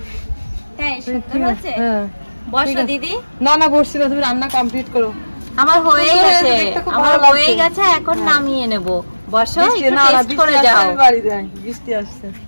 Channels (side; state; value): both; inverted; correlation -1.00